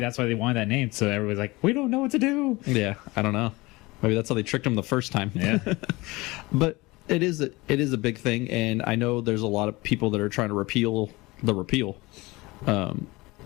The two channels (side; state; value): right; quieter; 22.2 dB